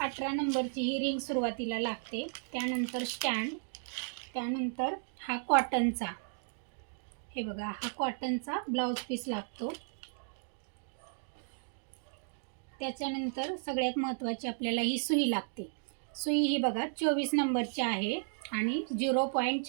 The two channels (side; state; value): left; silent; digital silence